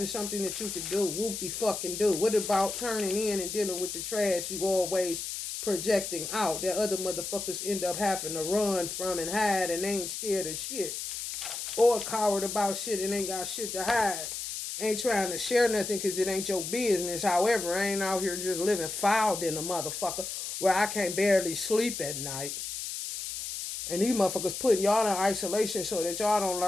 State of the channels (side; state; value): left; noise; hiss, 6 dB below the sound